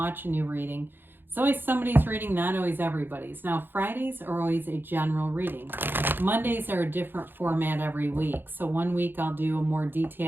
a new reading. It's always somebody's reading, not always everybody's. Now, Fridays are always a general reading. Mondays are a different format every week. So one week I'll do a more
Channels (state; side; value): late; left; 0.098 ms